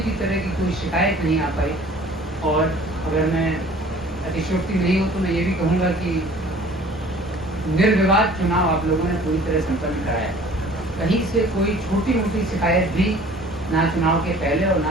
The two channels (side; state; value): both; normal; correlation 0.50